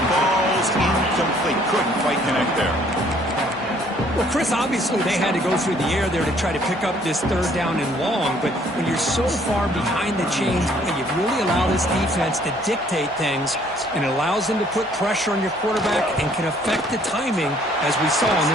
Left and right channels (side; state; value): both; normal; correlation 0.61